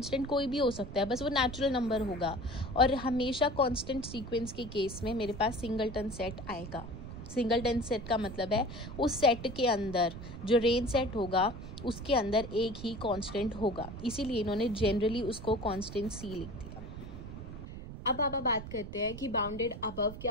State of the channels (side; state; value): right; noise; rumble, 11 dB below the sound